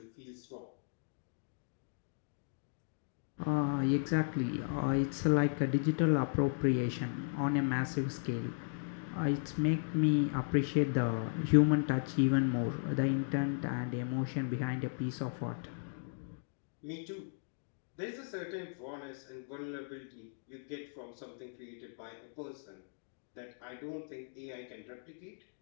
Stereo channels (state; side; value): silent; right; digital silence